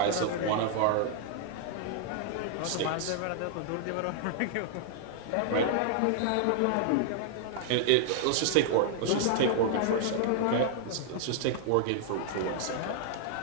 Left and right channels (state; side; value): different; both; correlation 0.00